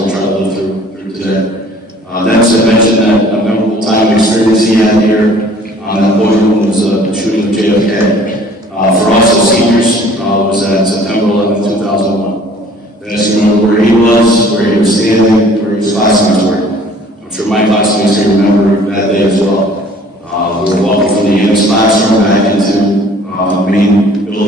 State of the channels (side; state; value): both; normal; correlation 0.53